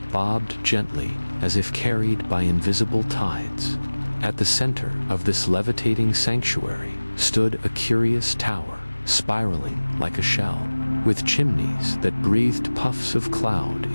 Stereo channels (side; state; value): both; inverted; correlation -1.00